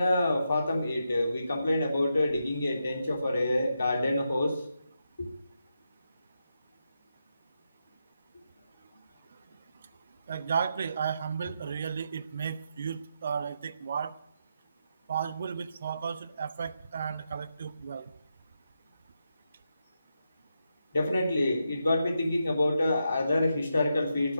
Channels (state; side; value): inverted; both; correlation -0.85